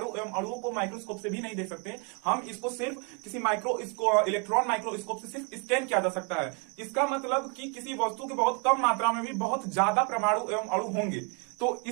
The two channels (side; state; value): left; quieter; 35.6 dB